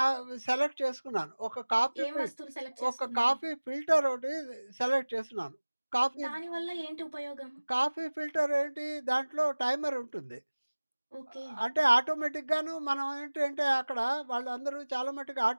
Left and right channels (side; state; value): both; inverted; correlation -1.00